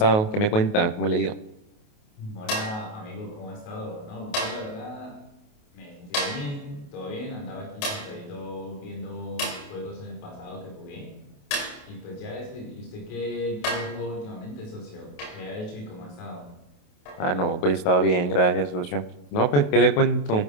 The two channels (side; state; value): right; late; 28 ms